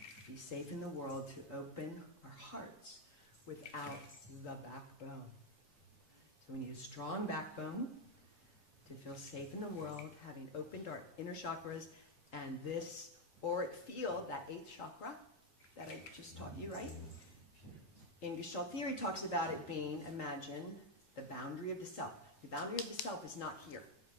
be safe in the world to open our hearts without the backbone. So we need a strong backbone to feel safe in the world, having opened our inner chakras and this auric field, that 8th chakra that I just taught you, right? In Gestalt theory talks about it being, imagine, the boundary of the self. The boundary of the self is not here.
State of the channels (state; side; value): normal; both; correlation 0.03